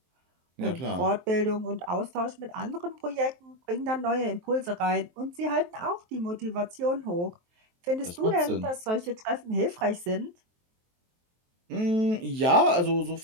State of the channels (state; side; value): late; left; 23 ms